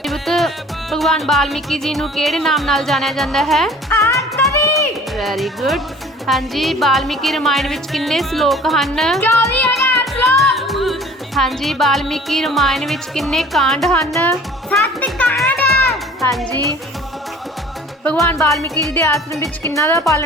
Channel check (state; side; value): normal; both; correlation 0.48